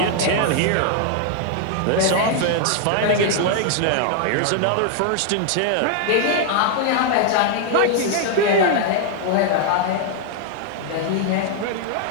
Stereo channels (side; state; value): both; different; correlation 0.00